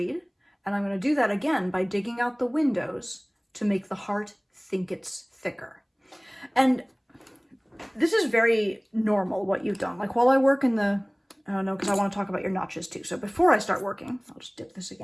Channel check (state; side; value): identical; both; correlation 1.00